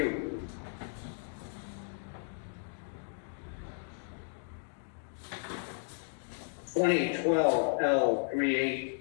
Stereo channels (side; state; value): right; silent; digital silence